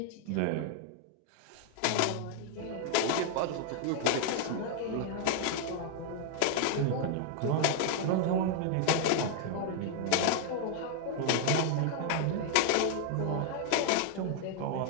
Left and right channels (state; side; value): different; both; correlation 0.00